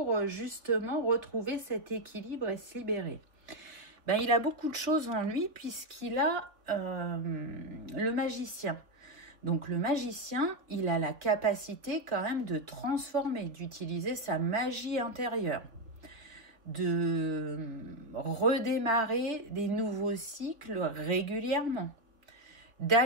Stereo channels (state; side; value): late; left; 3.4 ms